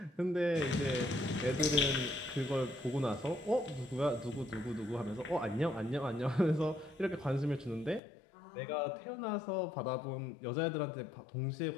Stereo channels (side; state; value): right; drops out; at 8.0 s